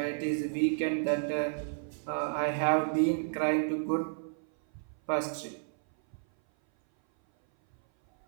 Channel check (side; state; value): left; silent; 57 dB below the other